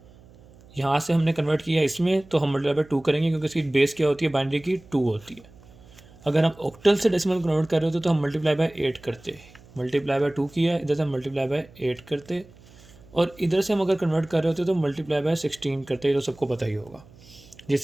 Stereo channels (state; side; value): noise; right; hum, 24 dB below the sound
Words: यहाँ से हमने कन्वर्ट किया इसमें, तो हम मल्टीप्लाई बाय 2 करेंगे, क्योंकि इसकी बेस क्या होती है, बाइनरी की 2 होती है। अगर हम ऑक्टल से डेसिमल में कन्वर्ट कर रहे होते तो हम मल्टीप्लाई बाय 8 करते। मल्टीप्लाई बाय 2 किया, इधर से मल्टीप्लाई बाय 8 करते, और इधर से हम अगर कन्वर्ट कर रहे होते तो मल्टीप्लाई बाय 16 करते, तो सबको पता ही होगा